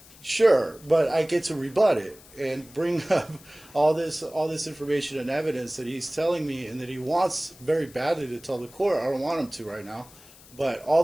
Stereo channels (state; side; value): noise; left; hiss, 23 dB below the sound